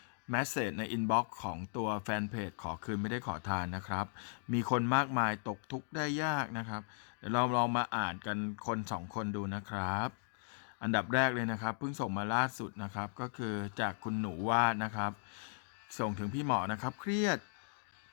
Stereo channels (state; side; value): silent; right; digital silence